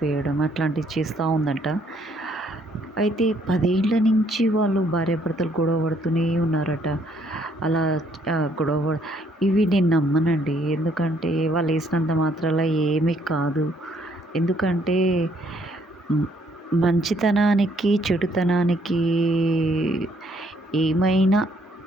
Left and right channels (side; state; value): both; normal; correlation 0.67